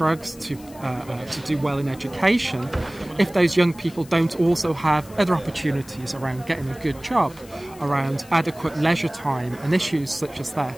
to do well in education, if those young people don't also have other opportunities around getting a good job, around adequate leisure time and issues such as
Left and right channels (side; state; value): left; noise; hiss, 22 dB below the sound